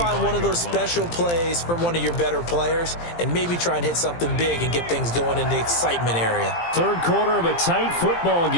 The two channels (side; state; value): right; late; 17 ms